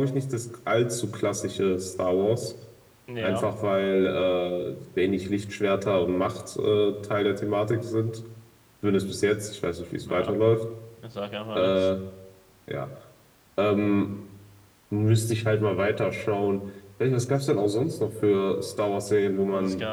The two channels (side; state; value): both; identical; correlation 1.00